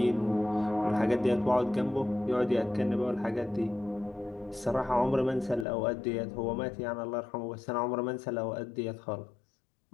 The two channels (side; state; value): right; drops out; at 5.7 s